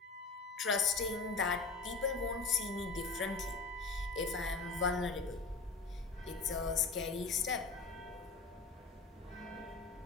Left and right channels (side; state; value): right; quieter; 4.0 dB